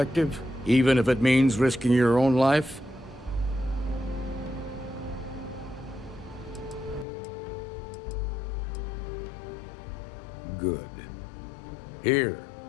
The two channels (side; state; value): right; drops out; at 7.1 s